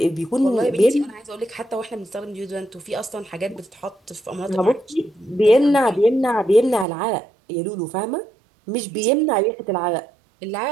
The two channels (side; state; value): left; drops out; at 6.9 s